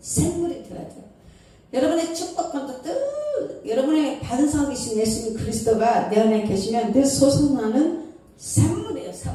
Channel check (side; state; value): both; identical; correlation 1.00